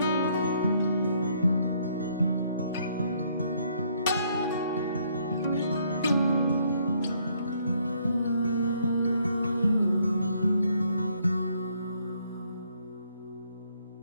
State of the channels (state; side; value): inverted; both; correlation -0.68